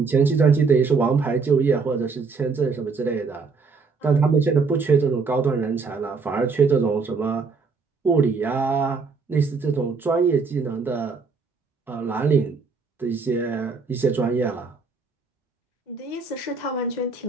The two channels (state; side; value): quieter; left; 4.7 dB